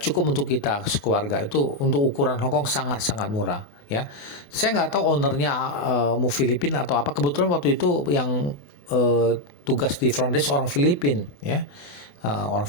untuk kita sekeluarga, itu untuk ukuran Hong Kong sangat-sangat murah ya. Saya nggak tahu ownernya mau Filipina atau apa. Kebetulan waktu itu yang tugas di front desk orang Filipin ya, orang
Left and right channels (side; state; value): right; late; 28 ms